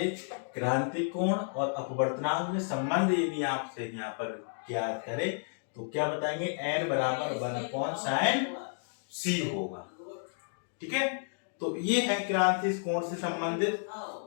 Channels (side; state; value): right; silent; digital silence